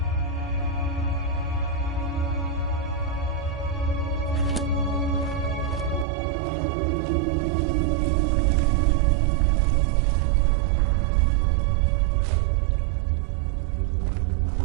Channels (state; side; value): drops out; left; at 6.1 s